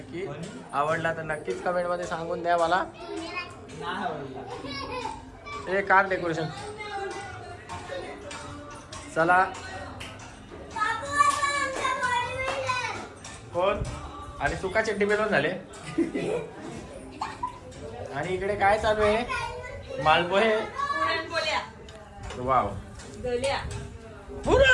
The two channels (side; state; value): both; identical; correlation 1.00